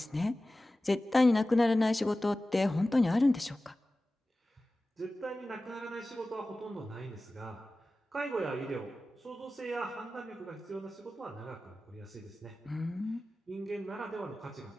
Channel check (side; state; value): both; normal; correlation 0.96